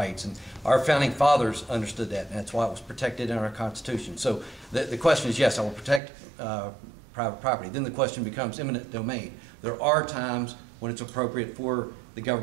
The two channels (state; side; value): drops out; left; at 6.0 s